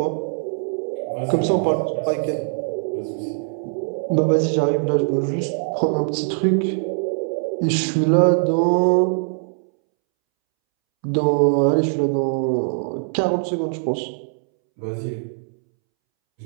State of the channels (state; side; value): silent; left; 64 dB below the other